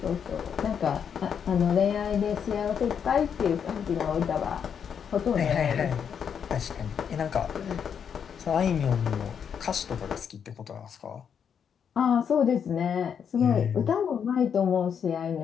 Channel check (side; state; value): right; quieter; 7.5 dB